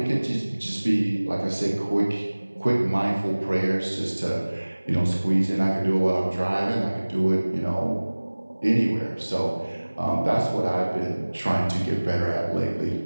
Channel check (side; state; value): both; inverted; correlation -1.00